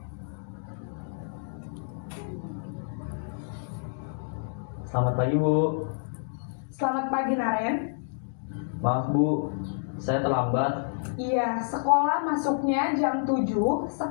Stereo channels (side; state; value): right; silent; digital silence